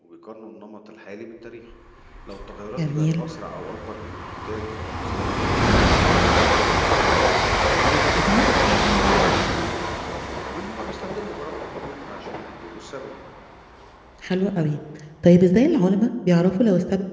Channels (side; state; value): both; identical; correlation 1.00